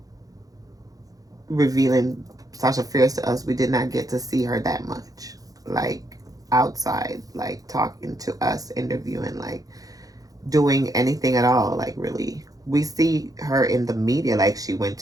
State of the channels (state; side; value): late; left; 0.17 ms